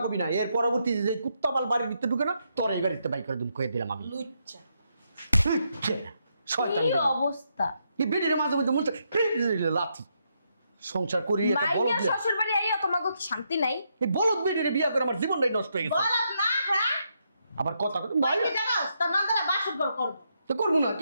কবি না, এর পরবর্তী যে কুত্তা পাল বাড়ির ভিতরে ঢুকে না, তোর এই বাড়িতে বাই করে দিম, কয়ে দিলাম আমি। লুচ্চা শয়তান কি বেটা। অবস্থা! এই বেটির মাঝে মধ্যে মুখে লাথি সংসার করি, একটা বলদ মাইয়া বিয়া। শ্বশুর বাড়ি আইয়া তোমাকে কি শান্তি নাই? এই বলদ বেটির বিয়া করে আমার জীবনটাই নষ্ট হয়ে গেছে। বলত না, হ্যাঁ? আবার কথা ভাই কি জানাস? তোর নন্দরা বাসর ঘর করব। তো করবো না,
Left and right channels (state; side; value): inverted; both; correlation -0.79